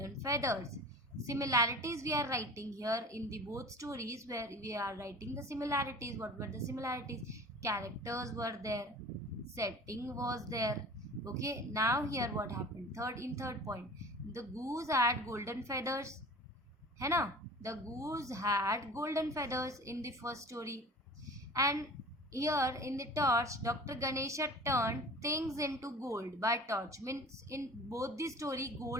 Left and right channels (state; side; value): normal; both; correlation 0.40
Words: feathers. Similarities we are writing here in the both stories, where we are writing the similarities. What were the similarities? Characters were there. Setting was there. Okay. Now here what happened? Third point. The goose had golden feathers. है ना? The goose had golden feathers in the first story. And here in the torch, Dr. Ganesha turned things into gold by torch. Means in both the story